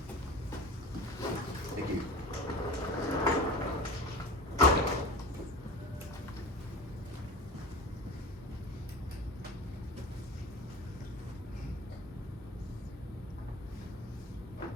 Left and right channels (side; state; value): both; normal; correlation 0.33